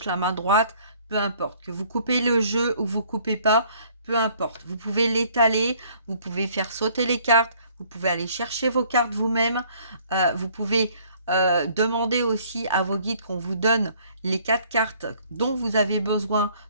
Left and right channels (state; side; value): inverted; both; correlation -0.60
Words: la main droite, peu importe. Que vous coupez le jeu ou vous coupez pas, peu importe. Vous pouvez l'étaler, vous pouvez faire sauter les cartes, vous pouvez aller chercher vos cartes vous-même. Vous pouvez demander aussi à vos guides qu'on vous donne les 4 cartes dont vous avez besoin